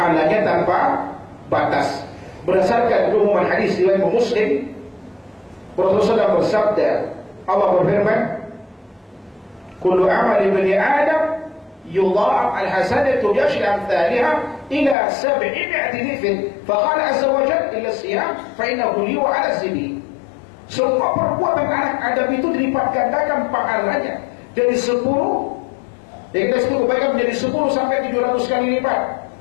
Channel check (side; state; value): right; drops out; at 15.0 s